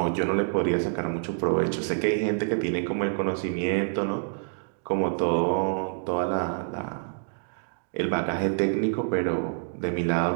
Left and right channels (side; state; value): left; silent; digital silence